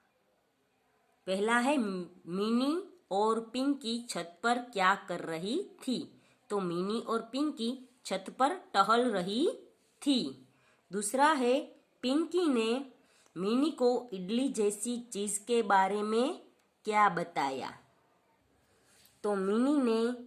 पहला है मिनी और पिंकी छत पर क्या कर रही थी। तो मिनी और पिंकी छत पर टहल रही थी। दूसरा है पिंकी ने मिनी को इडली जैसी चीज के बारे में क्या बताया। तो मिनी ने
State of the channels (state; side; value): identical; both; correlation 1.00